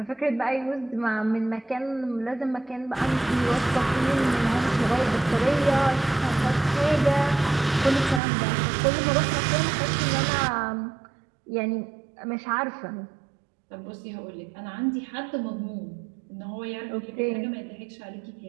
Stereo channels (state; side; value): drops out; left; at 8.2 s